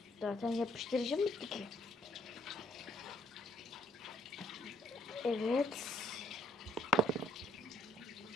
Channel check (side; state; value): both; normal; correlation 0.69